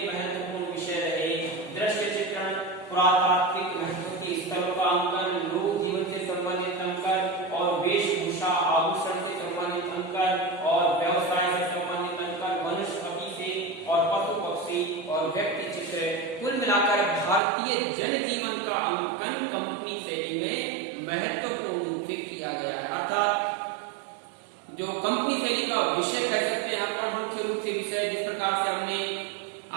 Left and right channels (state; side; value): drops out; left; at 17.4 s